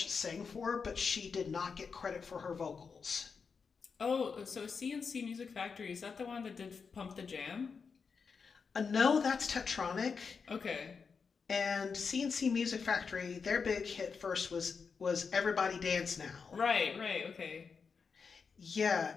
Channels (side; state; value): right; quieter; 5.5 dB